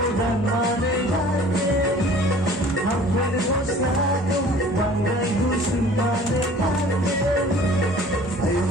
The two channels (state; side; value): normal; both; correlation 0.49